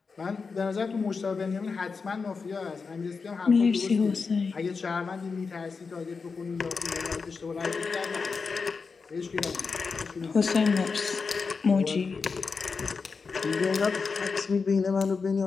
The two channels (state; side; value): quieter; right; 4.9 dB